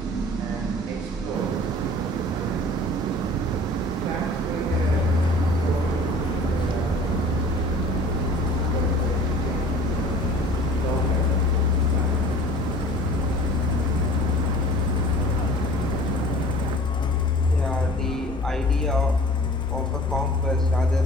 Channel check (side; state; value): both; normal; correlation 0.46